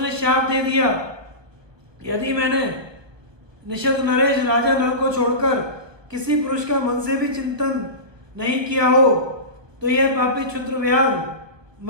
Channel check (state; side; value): late; left; 1.0 ms